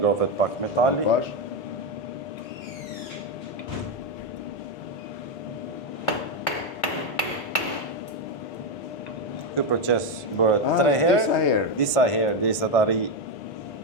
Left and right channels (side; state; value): both; normal; correlation 0.07